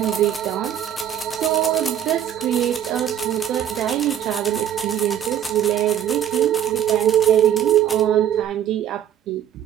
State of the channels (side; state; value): left; quieter; 10.3 dB